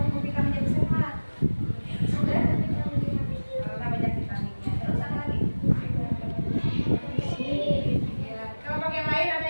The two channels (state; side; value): inverted; both; correlation -1.00